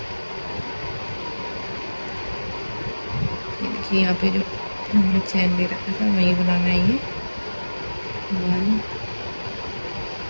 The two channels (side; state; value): both; inverted; correlation -1.00